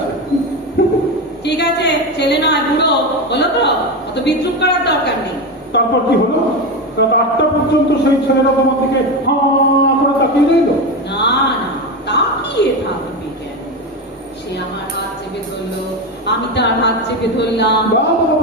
ঠিক আছে, ছেলে নয় বুড়ো, বলো তো, অত বিদ্রুপ করার দরকার নেই। তারপর কি হলো? রাত 8টা পর্যন্ত সেই ছেলেটা তোমার দিকে হাঁ করে তাকিয়ে রইল। না না, তাকিয়ে থাকবে কেন? সে আমার হাত চেপে ধরলো, আমি তার হাত চেপে ধরলাম।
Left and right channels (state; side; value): normal; both; correlation 0.17